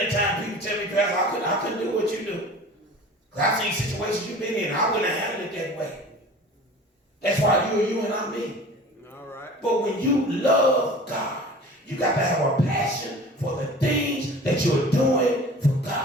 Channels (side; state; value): both; normal; correlation 0.42